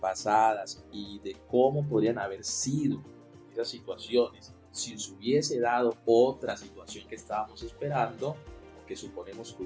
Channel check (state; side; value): identical; both; correlation 1.00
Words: y de cómo podrían haber sido esas situaciones, si se hubiese dado otra situación que estábamos esperando, o que suponemos que